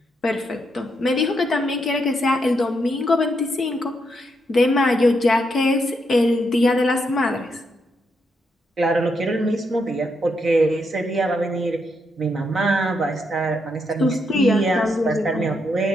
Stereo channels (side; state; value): both; normal; correlation 0.80